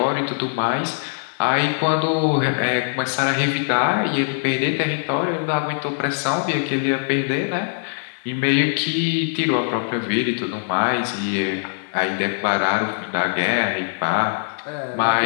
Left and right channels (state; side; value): silent; right; digital silence